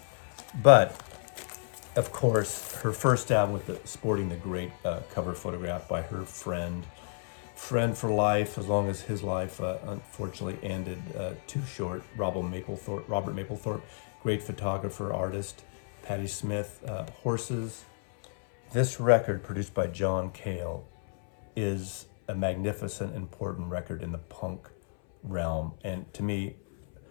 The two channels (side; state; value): right; silent; 57 dB below the other